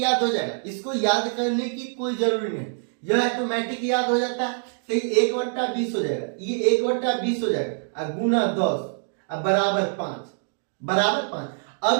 हो जाएगा, इसको याद करने की कोई जरूरी नहीं, यह ऑटोमेटिक याद हो जाता है। तो ये 1/20 हो जाएगा, ये 1/20 हो जाएगा, गुना 10 अब बराबर 5, बराबर 5।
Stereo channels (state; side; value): silent; left; digital silence